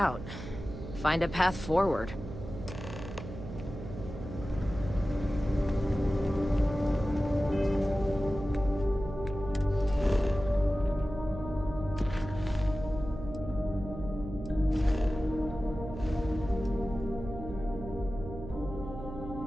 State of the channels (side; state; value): right; noise; hum, 10 dB below the sound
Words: Find a path forward.